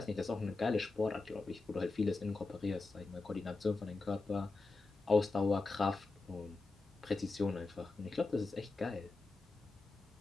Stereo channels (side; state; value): right; quieter; 3.6 dB